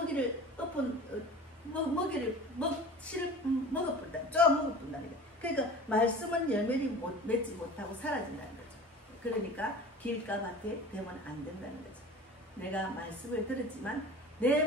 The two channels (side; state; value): both; normal; correlation 0.39